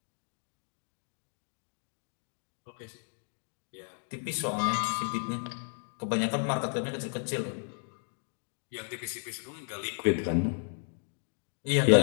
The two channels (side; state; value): right; silent; 55 dB below the other